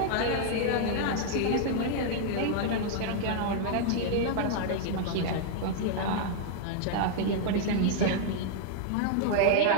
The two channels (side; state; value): both; different; correlation -0.01